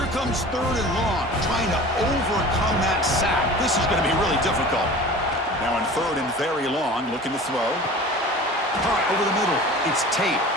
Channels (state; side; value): normal; both; correlation 0.40